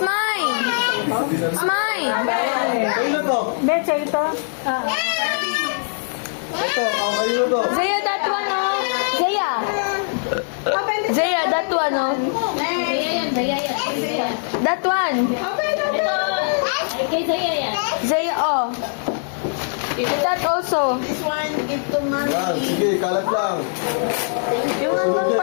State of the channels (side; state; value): right; silent; 65 dB below the other